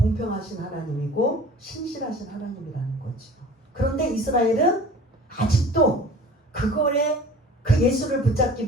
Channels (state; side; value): normal; both; correlation 0.44